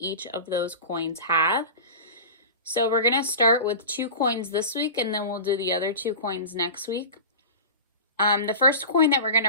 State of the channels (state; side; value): inverted; both; correlation -0.32